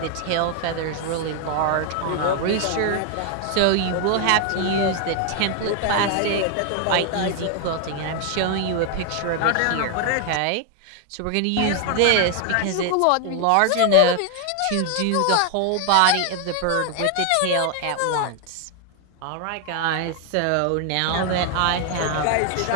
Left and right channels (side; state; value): both; different; correlation 0.00